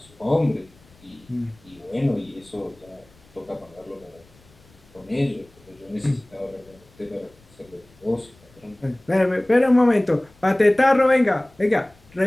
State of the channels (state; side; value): noise; left; rumble, 28 dB below the sound